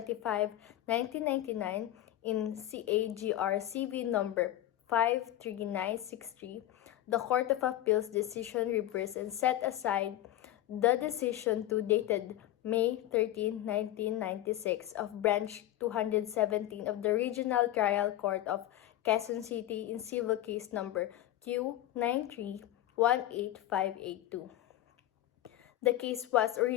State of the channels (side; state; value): right; quieter; 13.7 dB